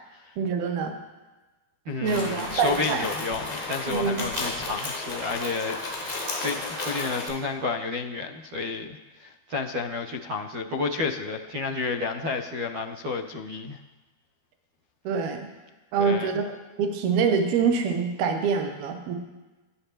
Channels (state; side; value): late; left; 12 ms